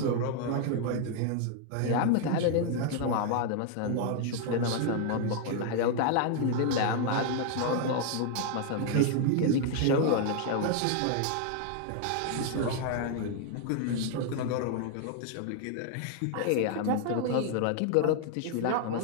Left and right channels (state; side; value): different; both; correlation 0.00